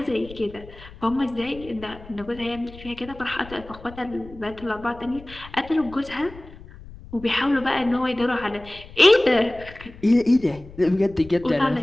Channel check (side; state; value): left; noise; rumble, 18 dB below the sound